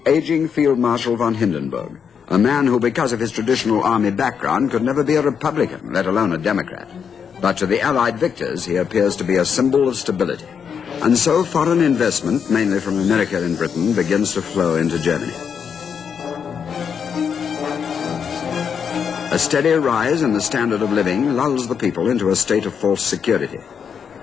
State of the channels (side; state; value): right; quieter; 7.0 dB